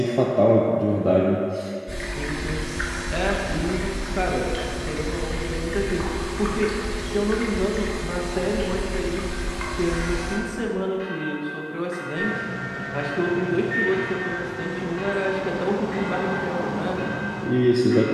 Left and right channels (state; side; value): identical; both; correlation 1.00